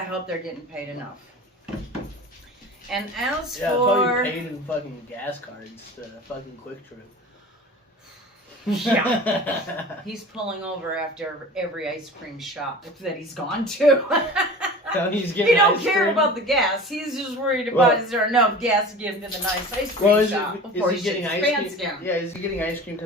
hope they're getting paid enough. And as Yeah, for... probably paid in fucking gas cards to fucking Quick Trip. Yeah. He's pulling over after every ice cream shop that he's gone to. He's He don't care about the gas. He's just worried about is there enough gas to get him to the nice ice cream shop before he getting shits his ice pants cream? down. Yeah, is he getting ice cream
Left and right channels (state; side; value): normal; both; correlation 0.38